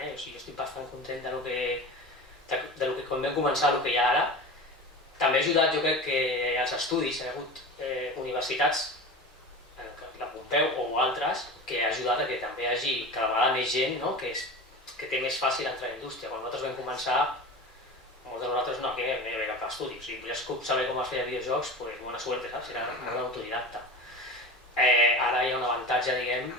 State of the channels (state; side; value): normal; both; correlation 0.31